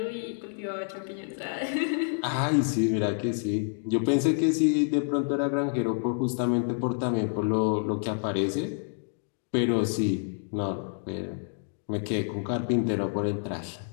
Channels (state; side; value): silent; right; 59 dB below the other